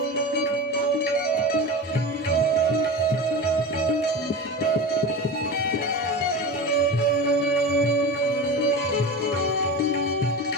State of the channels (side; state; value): both; normal; correlation 0.28